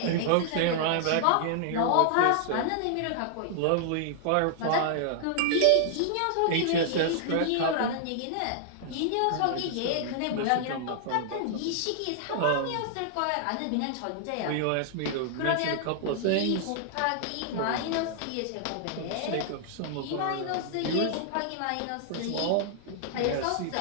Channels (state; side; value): different; both; correlation -0.01